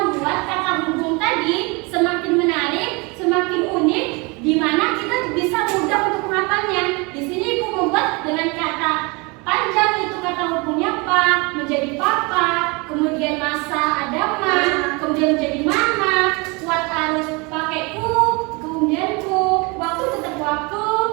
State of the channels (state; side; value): quieter; left; 28.2 dB